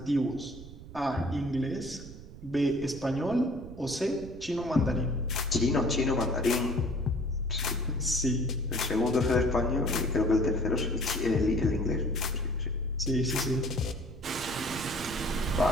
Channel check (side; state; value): right; noise; rumble, 15 dB below the sound